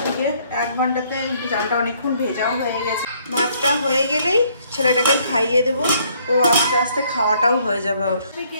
দিকে, 1 ঘন্টাতে চালটা অনেকক্ষণ ভেজাও হয়ে গেছে। ভাতটা হয়ে গেলেই ছেলেটাকে খাইয়ে দেবো, ও আস্তে আস্তে খাওয়াটাও হয়ে যাবে ওর। কে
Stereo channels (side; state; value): both; inverted; correlation -0.65